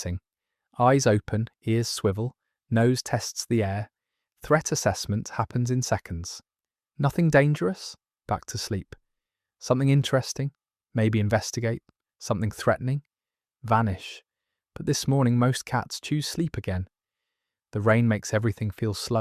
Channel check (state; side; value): identical; both; correlation 1.00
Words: Eyes open, ears swivel, nose tests the air. Threat assessment happens in seconds. Nothing dangerous? Back to sleep. Something interesting? Maybe investigate. Something threatening? Vanish. But this morning most cats choose sleep again. The rain makes everything feel